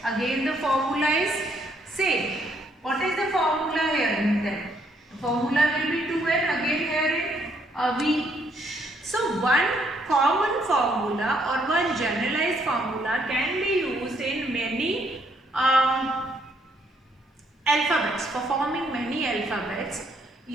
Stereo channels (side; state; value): both; normal; correlation 0.70